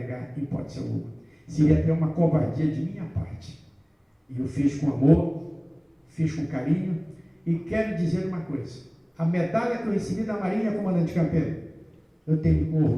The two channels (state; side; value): identical; both; correlation 1.00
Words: hipótese alguma. Seria até uma covardia de minha parte. E eu fiz com amor, fiz com carinho, e quero dizer uma coisa. A medalha que eu recebi da Marinha, comandante Campeiro, eu tenho com